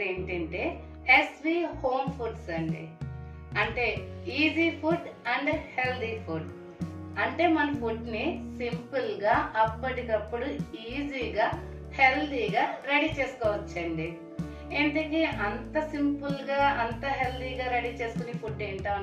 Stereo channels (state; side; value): identical; both; correlation 1.00